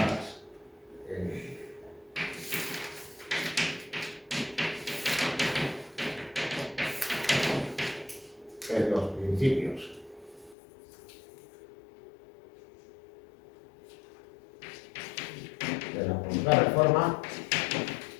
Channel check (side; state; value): right; drops out; at 10.6 s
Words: en los principios de la Contrarreforma